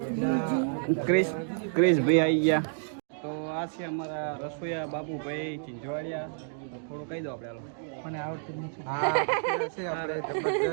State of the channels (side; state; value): left; silent; digital silence